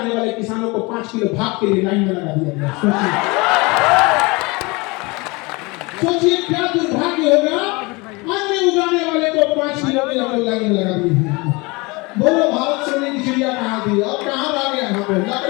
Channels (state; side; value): quieter; right; 25.7 dB